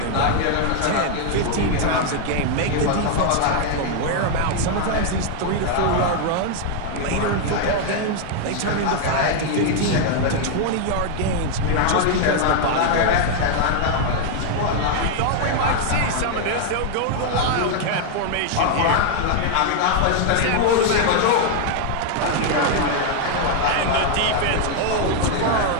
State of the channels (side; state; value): both; different; correlation 0.00